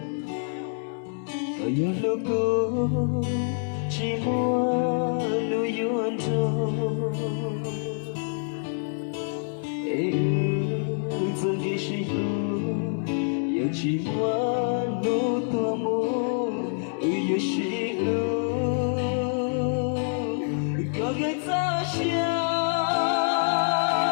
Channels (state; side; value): silent; right; digital silence